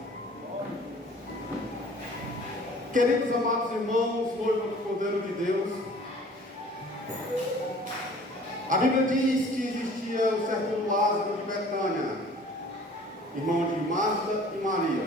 Queridos amados irmãos, noivo do Cordeiro de Deus, a Bíblia diz que existia o certo Lázaro de Betânia, irmão de Marta e Maria.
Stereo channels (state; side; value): normal; both; correlation 0.49